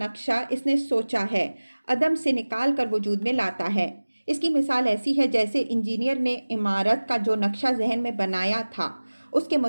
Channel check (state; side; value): inverted; both; correlation -1.00